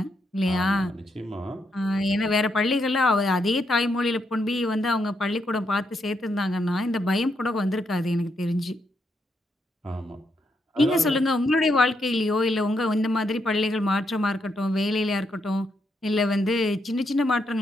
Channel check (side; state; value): both; normal; correlation 0.79